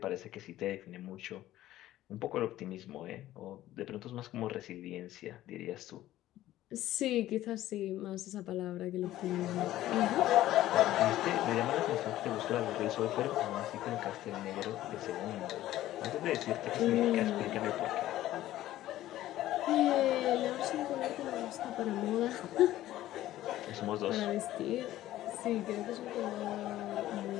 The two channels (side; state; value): right; quieter; 14.3 dB